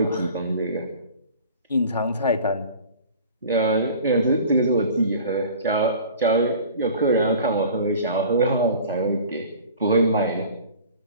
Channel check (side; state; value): both; inverted; correlation -0.43